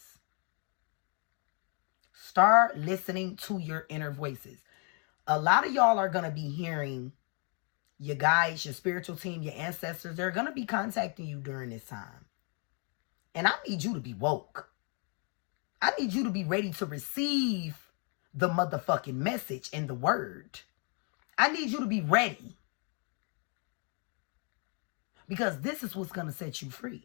Start listening to your inner voices. A lot of y'all are going to be hearing your guides, your spiritual team, your ancestors. They're going to be contacting you during this time. And I need you to be woke. I need you to be ready to receive the motherfucking message and the word. I need you to be ready. Because this is what's going to set you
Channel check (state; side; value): quieter; right; 37.3 dB